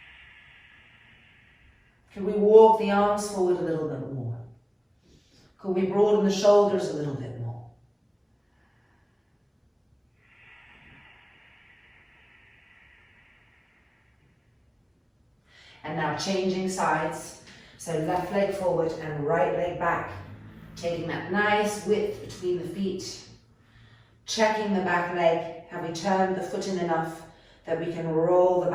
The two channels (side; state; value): both; identical; correlation 1.00